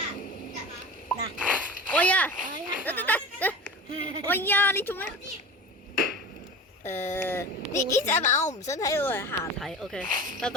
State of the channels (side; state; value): both; normal; correlation 0.33